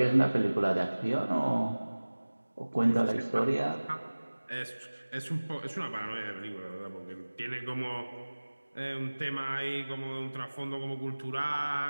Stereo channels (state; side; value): inverted; both; correlation -1.00